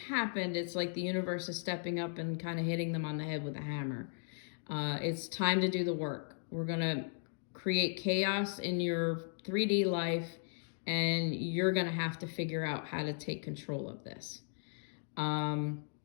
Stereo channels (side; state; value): right; silent; digital silence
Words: it's like the universe is stepping up and kind of hitting them on the head with a hammer. It's time to do the work. We're going to create chaos in your 3D life, and you're going to have to figure out how to take control of this. And